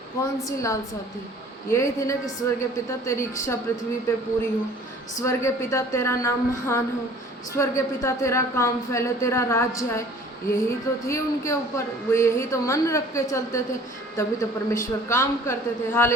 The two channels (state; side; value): normal; both; correlation 0.50